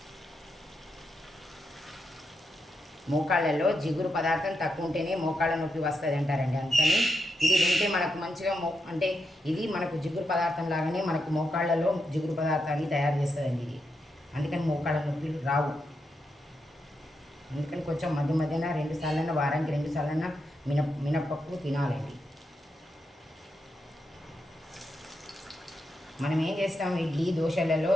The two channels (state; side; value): normal; both; correlation 0.83